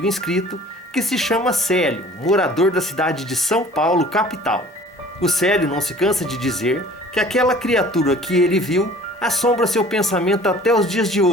inscrito, que se chama Célio, morador da cidade de São Paulo, capital. O Célio não se cansa de dizer que aquela criatura que ele viu assombra seu pensamento até os dias de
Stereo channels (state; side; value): normal; both; correlation 0.48